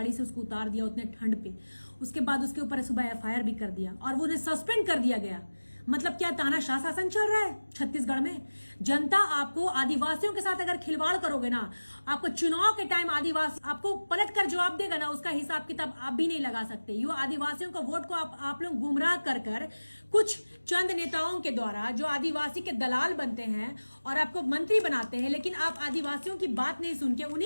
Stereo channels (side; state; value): both; inverted; correlation -1.00